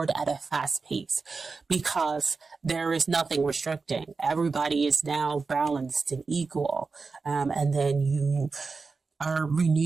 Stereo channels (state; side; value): quieter; left; 4.4 dB